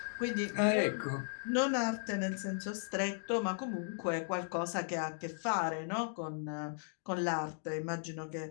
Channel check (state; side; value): silent; right; digital silence